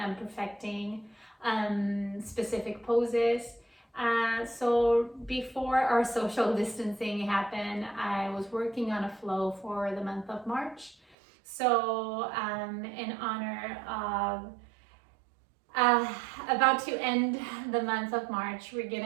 perfecting specific poses. So before our social distancing happened, I was working on a flow for the month of March. So in honor of about to end the month of March, we're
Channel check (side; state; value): left; drops out; at 11.2 s